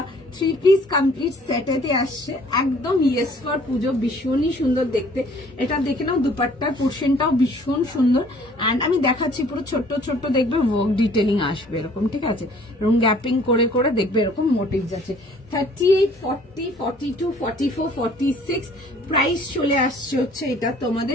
3 piece complete সেটেতে আসছে, একদম ইয়েস ফর পুজো, ভীষণই সুন্দর দেখতে। এটা দেখে নাও, দুপাট্টার পোর্শনটাও ভীষণ সুন্দর, অ্যান্ড আমি দেখাচ্ছি পুরো ছোট্ট ছোট্ট দেখবে ওয়ার্ক ডিটেলিং আসবে এরকম, ঠিক আছে? এবং গ্যাপিং করে করে দেখবে এরকম মোটিভ যাচ্ছে। 38 40 42 44 46 প্রাইস চলে আসছে হচ্ছে এটা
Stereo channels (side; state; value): both; normal; correlation 0.56